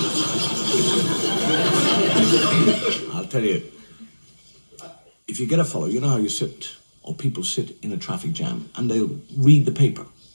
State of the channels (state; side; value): inverted; both; correlation -1.00